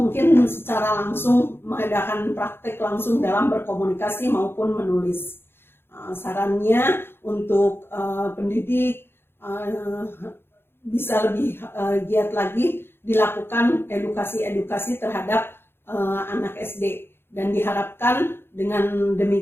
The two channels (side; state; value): right; late; 0.11 ms